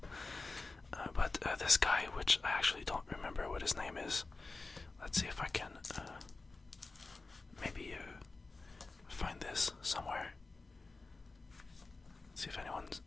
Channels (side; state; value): right; quieter; 3.6 dB